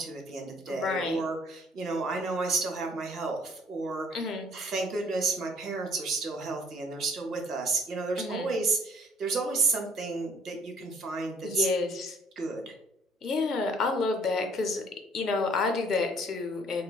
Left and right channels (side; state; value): both; normal; correlation 0.59